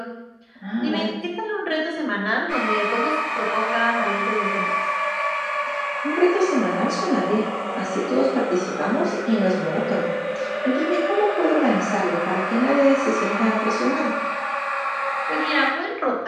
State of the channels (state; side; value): identical; both; correlation 1.00